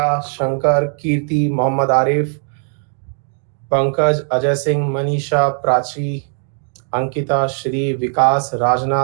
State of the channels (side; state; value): left; silent; 55 dB below the other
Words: Shankar, Kirti, Mohammad Arif, Pankaj, Ajay Singh, Manisha, Prachi, Ankita, Shri, Vikas,